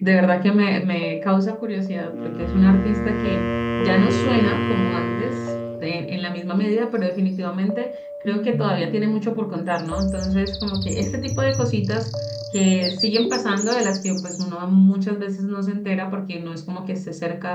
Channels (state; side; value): identical; both; correlation 1.00